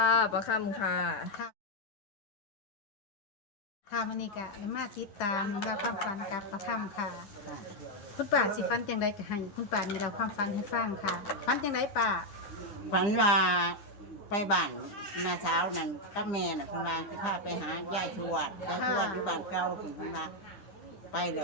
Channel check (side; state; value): right; late; 9.9 ms